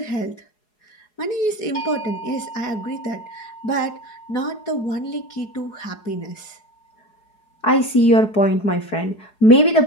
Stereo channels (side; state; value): right; late; 4.8 ms